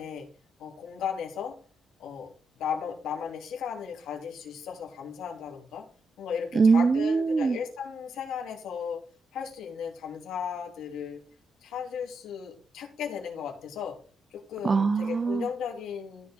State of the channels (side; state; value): both; normal; correlation 0.82